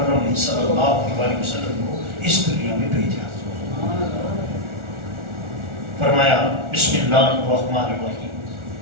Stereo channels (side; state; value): left; late; 1.4 ms